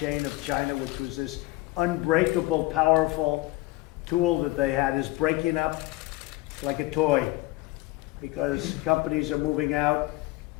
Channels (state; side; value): quieter; right; 19.7 dB